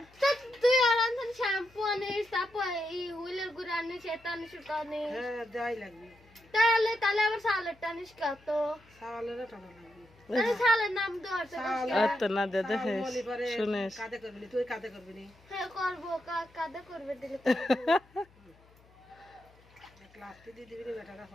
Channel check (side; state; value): left; noise; hum, 28 dB below the sound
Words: তুই আর আনছেন শ্যাম্পু আনিস তারপর এই হুইলের গুড় আনিস এটা আনিস ওটা আনিস হ্যাঁ যাই লাগবে তাহলে আবার সালেরটা আনিস কত সালের টাকা লাগবে আরে সালের নাম দেওয়ার তো না দে দেখে শুনিস কাদে করবি না তুই কাদে করবি না হ্যাঁ করবো কাদা করবে দিলে ক্লাসটি দিয়ে দিবি না টাকা